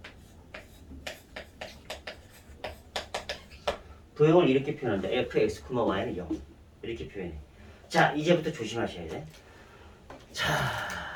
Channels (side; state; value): both; identical; correlation 1.00